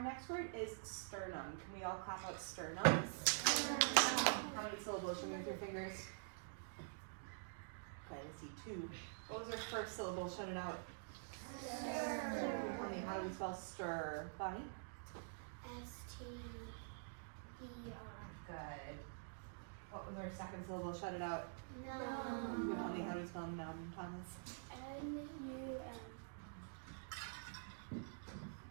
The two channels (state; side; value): silent; left; digital silence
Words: next word is sternum. Can we all clap out sternum? How many syllables? Show me with your fingers. Okay, let's see, 2. What was our first syllable? Shout it out. Stir. How do we spell stir? Bonnie? S-T-E-R. Good. What was our second syllable? Shout it out. Numb. Tell me how do we spell numb, Thomas? N-U-M.